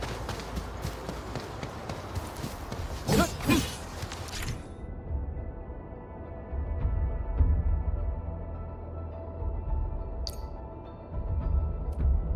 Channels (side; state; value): both; identical; correlation 1.00